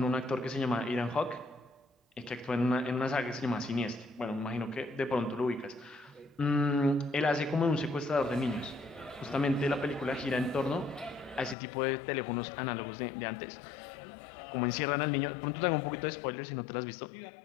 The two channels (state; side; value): drops out; right; at 11.6 s